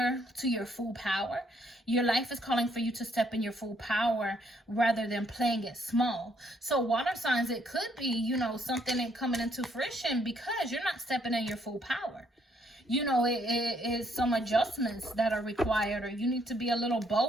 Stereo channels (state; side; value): normal; both; correlation 0.70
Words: to your full power. Your life is calling for you to step in your full power rather than playing it small. So water signs, it could be, something coming into fruition because you're not stepping in your full power. It is some adjustments that are required, or you need to be a little